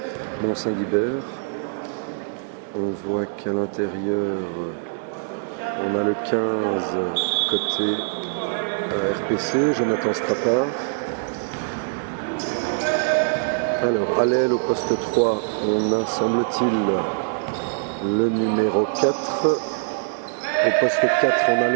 Mont-Saint-Guibert. On voit qu'à l'intérieur, on a le 15 côté RPC, Jonathan Strappard. Alors, à l'aile au poste 3, on a, semble-t-il, le numéro 4. Au poste 4, on a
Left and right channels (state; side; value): silent; left; digital silence